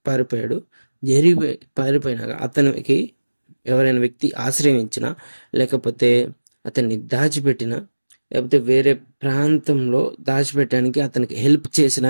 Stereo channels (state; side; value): inverted; both; correlation -1.00